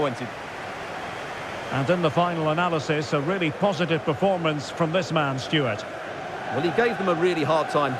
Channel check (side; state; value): both; identical; correlation 1.00